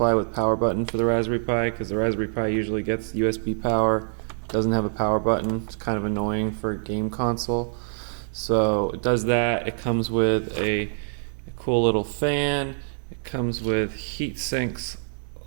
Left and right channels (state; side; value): silent; left; 62 dB below the other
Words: with power button for the Raspberry Pi, because the Raspberry Pi usually gets USB power, doesn't have a power button. It's kind of annoying for a game console. So it does that. It comes with a cool little fan. It comes with heat sinks